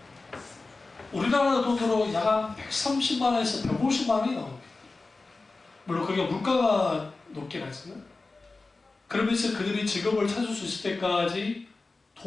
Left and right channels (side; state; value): right; quieter; 3.6 dB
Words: 우리나라 돈으로 약 130만 원에서 150만 원이 나옵니다. 물론 그게 물가가 높긴 하지만 그러면서 그들이 직업을 찾을 수 있을 때까지